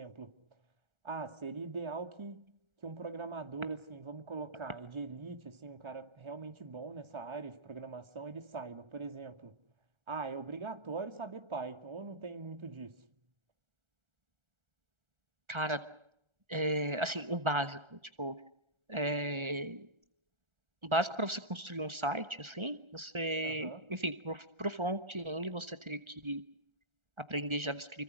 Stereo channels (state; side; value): late; left; 1.4 ms